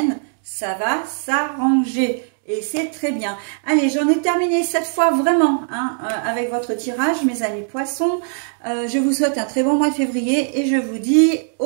ça va s'arranger. Et c'est très bien. Allez, j'en ai terminé cette fois vraiment, hein, avec votre tirage, mes amis poissons. Je vous souhaite un très bon mois de février et je vous dis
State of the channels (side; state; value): left; silent; digital silence